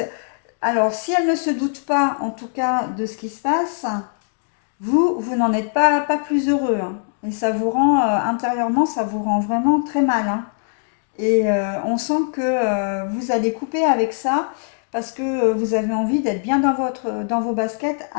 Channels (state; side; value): silent; right; digital silence